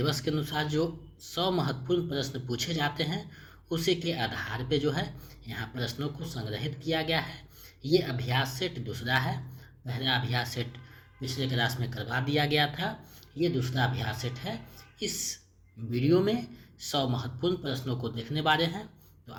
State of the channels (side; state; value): both; identical; correlation 1.00